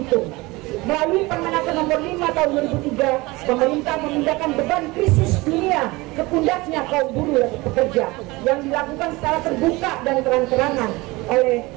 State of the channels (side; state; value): left; quieter; 22.3 dB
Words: Melalui Permenaker nomor 5 tahun 2003, pemerintah memindahkan beban krisis dunia ke pundaknya kaum buruh dan pekerja yang dilakukan secara terbuka dan terang-terangan oleh